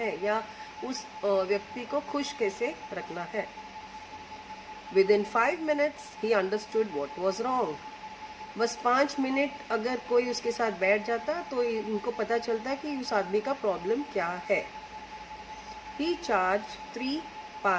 या उस व्यक्ति को खुश कैसे रखना है. Within 5 minutes he understood what was wrong. बस 5 मिनट अगर कोई उसके साथ बैठ जाता तो इनको पता चलता कि उस आदमी का प्रॉब्लम क्या है. He charged 3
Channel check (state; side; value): identical; both; correlation 1.00